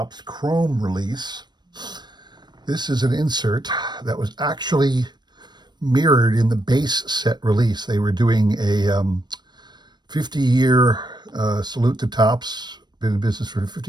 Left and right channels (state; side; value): late; left; 0.21 ms